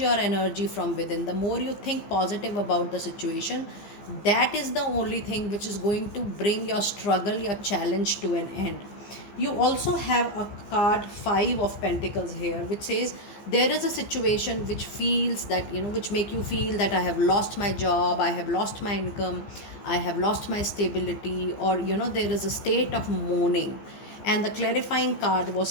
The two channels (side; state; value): right; late; 15 ms